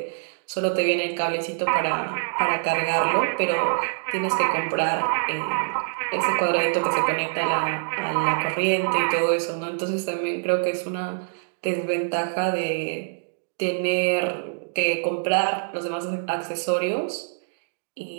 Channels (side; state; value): left; silent; digital silence